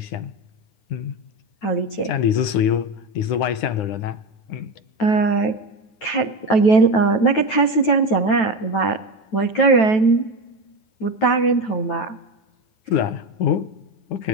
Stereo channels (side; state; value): right; late; 9.2 ms